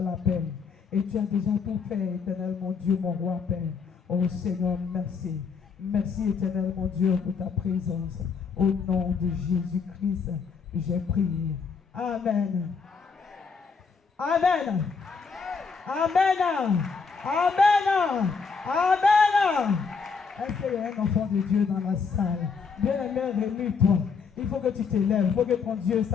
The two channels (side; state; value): right; quieter; 5.4 dB